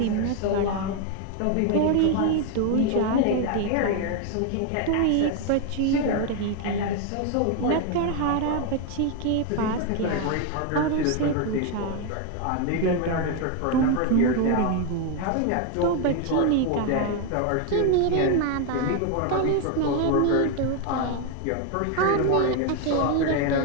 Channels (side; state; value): both; different; correlation 0.01